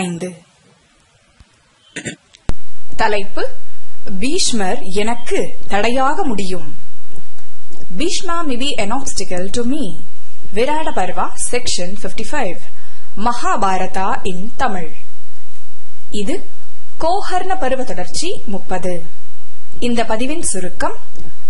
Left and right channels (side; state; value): both; identical; correlation 1.00